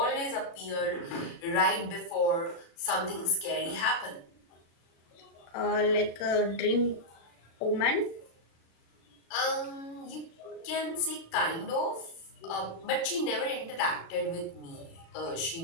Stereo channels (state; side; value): late; right; 36 ms